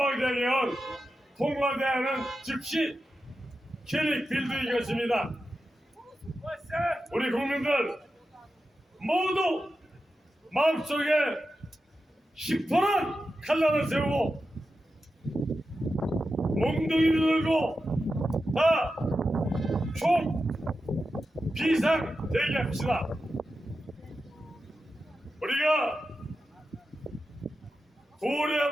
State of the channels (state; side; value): normal; both; correlation 0.91